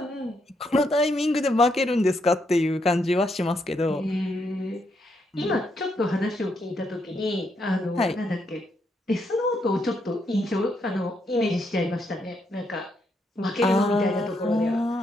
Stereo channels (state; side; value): normal; both; correlation 0.77